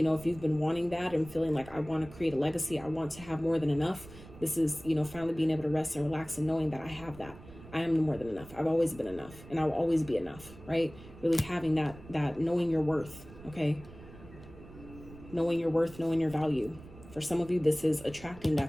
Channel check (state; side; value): noise; right; rumble, 18 dB below the sound